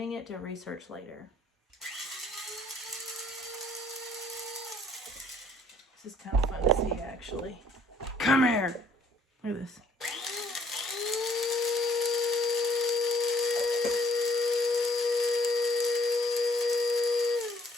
it to research later. This is kind of fun to see, actually. Come here. Look at this.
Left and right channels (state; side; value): normal; both; correlation 0.62